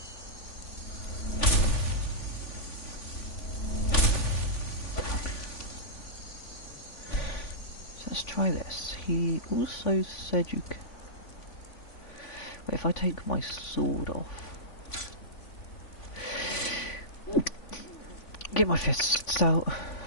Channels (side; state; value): right; late; 3.5 ms